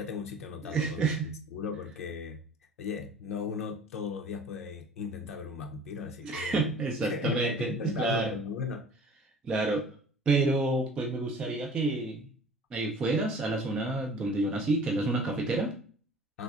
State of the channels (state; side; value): normal; both; correlation 0.47